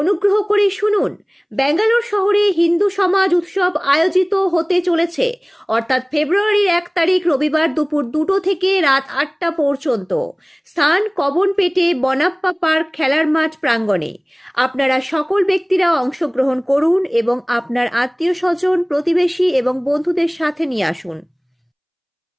করে শুনুন, ব্যাঙ্গালোর শহরে হিন্দু সমাজ উৎসব আয়োজিত হতে চলেছে, অর্থাৎ ফেব্রুয়ারির 1 তারিখ রবিবার দুপুর 2টো থেকে রাত 8টা পর্যন্ত। স্থান কবনপেটে বনাপ্পা পার্ক খেলার মাঠ প্রাঙ্গণে। আপনারা সকল ব্যক্তিরা অংশগ্রহণ করুন এবং আপনার আত্মীয় স্বজন, প্রতিবেশী এবং বন্ধুদের সাথে নিয়ে আসুন।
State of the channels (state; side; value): identical; both; correlation 1.00